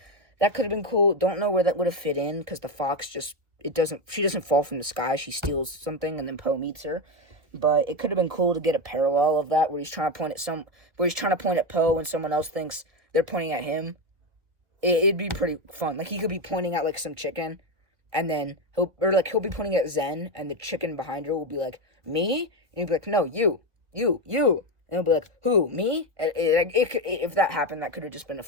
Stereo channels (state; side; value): late; left; 1.9 ms